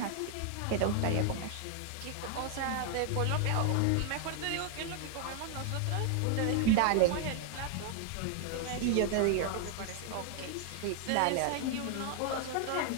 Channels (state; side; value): different; both; correlation 0.00